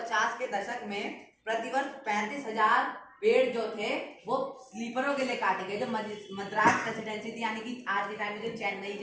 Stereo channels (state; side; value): identical; both; correlation 1.00